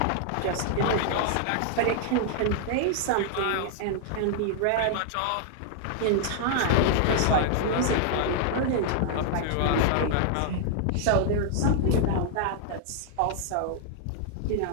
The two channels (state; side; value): different; both; correlation -0.01